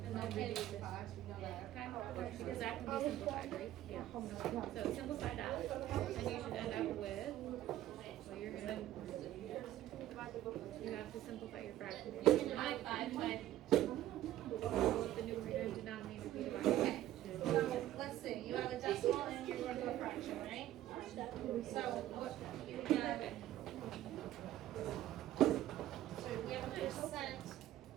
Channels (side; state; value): left; quieter; 13.4 dB